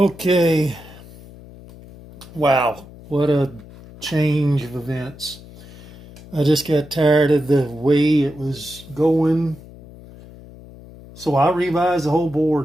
wow, what a change of events. I just got tired of the way it was going, so I revised the whole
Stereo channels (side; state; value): left; noise; hum, 19 dB below the sound